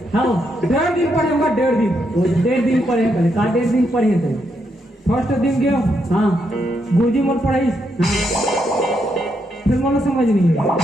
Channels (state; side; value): normal; both; correlation 0.79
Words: हाँ 1.5 दिन पढ़े होगा 1.5 दिन वो 1.5 दिन पढ़े थे का 1.5 दिन पढ़े थे फर्स्ट दिन गया हाँ गुरुजी मोर पढ़ाई फिर मोला समझ नहीं है